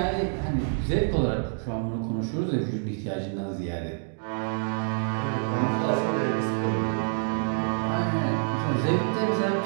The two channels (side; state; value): left; silent; digital silence